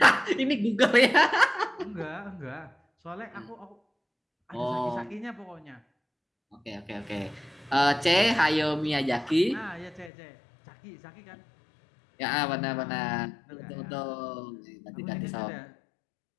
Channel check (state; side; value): drops out; right; at 10.1 s